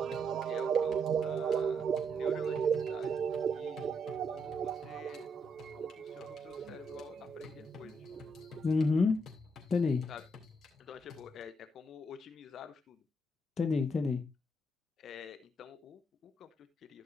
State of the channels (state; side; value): normal; both; correlation 0.77